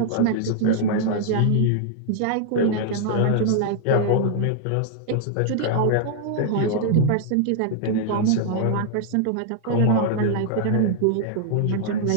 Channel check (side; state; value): both; different; correlation -0.01